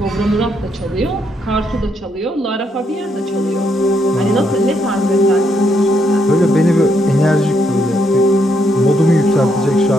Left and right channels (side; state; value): both; normal; correlation 0.75